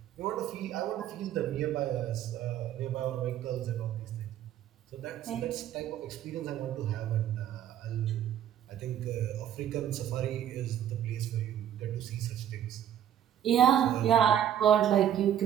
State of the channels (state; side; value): quieter; left; 10.5 dB